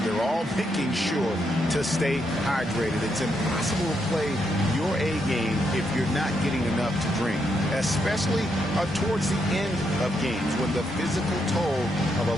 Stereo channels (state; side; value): normal; both; correlation 0.79